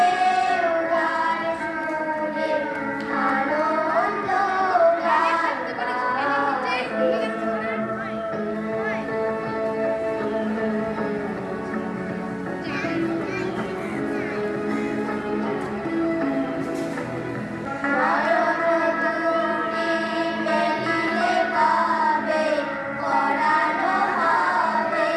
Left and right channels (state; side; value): identical; both; correlation 1.00